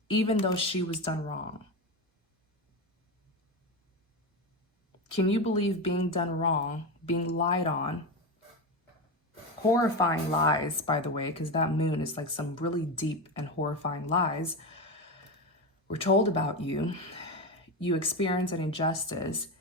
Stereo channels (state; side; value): normal; both; correlation 0.17